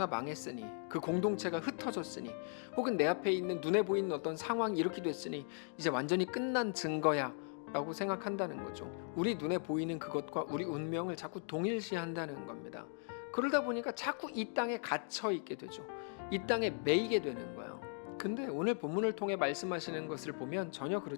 망했으니, 그 공동체가 흩어졌으니, 혹은 내 앞에 있는 눈에 보이는 어떤 상황이 이렇게 됐으니 이제 완전히 끝난 증거야 라고 생각한다는 거죠. 우리 눈에 보이는 그것과 우리 운명을 자꾸 동일시한다는 겁니다. 그러다 보니까 자꾸 이 땅에 갇혀 있게 되죠. 이 땅에 매이게 되는 거예요. 근데 오늘 본문을 통해 말씀하시는 것을 보면 전혀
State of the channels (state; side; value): silent; right; 52 dB below the other